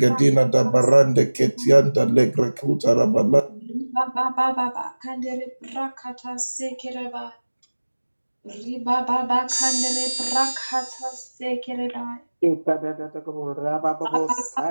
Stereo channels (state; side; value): inverted; both; correlation -1.00